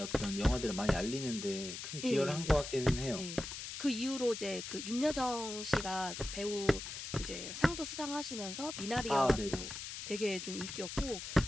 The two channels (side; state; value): left; noise; hiss, 7 dB below the sound